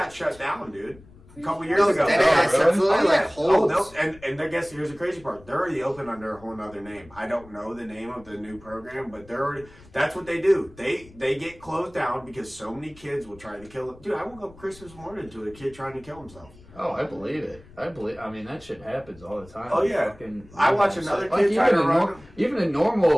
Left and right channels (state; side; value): noise; left; rumble, 23 dB below the sound